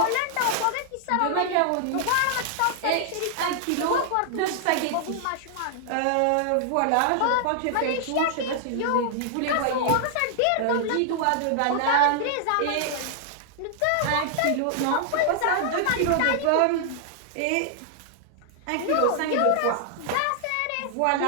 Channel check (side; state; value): both; different; correlation -0.01